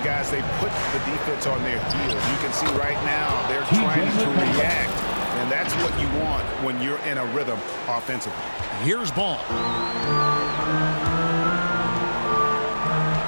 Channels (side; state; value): both; inverted; correlation -1.00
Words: guys, they put the defense on their heels. You can see right now they're trying to react. And that's what you want when you're in a rhythm offensively. Here's Ball.